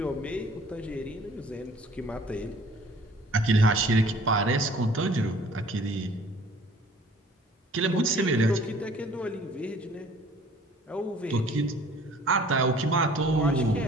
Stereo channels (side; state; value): both; normal; correlation 0.53